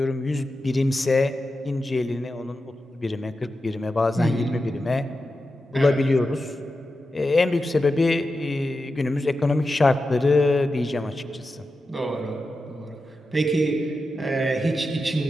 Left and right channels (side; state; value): both; normal; correlation 0.90